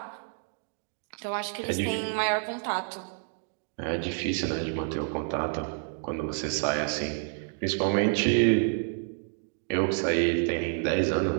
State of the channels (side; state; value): left; silent; 59 dB below the other